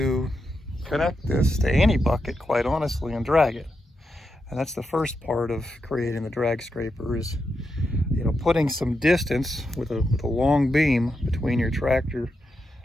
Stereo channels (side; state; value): both; normal; correlation 0.86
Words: connect this to any bucket, quite honestly, and drag it. And that's the first part of creating the drag scraper, is, you know, putting some distance with a long beam between your tractor